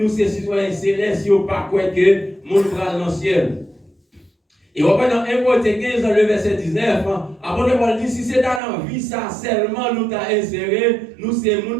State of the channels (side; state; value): left; drops out; at 8.6 s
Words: c'est citoyens célestes, si on pas quoi que mon bras dans le ciel. Et on va dans 1 Corinthiens 15, dans le verset 19, apôtre Paul dit si c'est dans la vie, ça seulement nous t'a inséré, nous c'est le